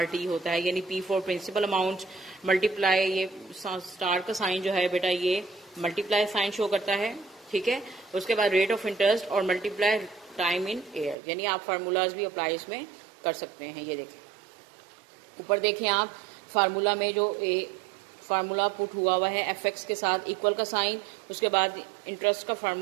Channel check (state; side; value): drops out; left; at 11.2 s